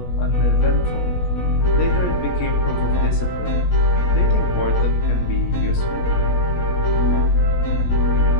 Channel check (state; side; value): late; right; 17 ms